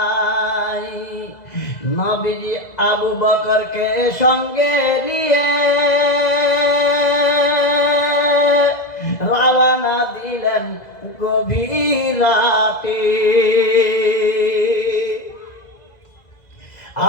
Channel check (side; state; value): right; late; 2.0 ms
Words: নবীজি আবু বকরকে সঙ্গে নিয়ে রওনা দিলেন গভীর রাতে।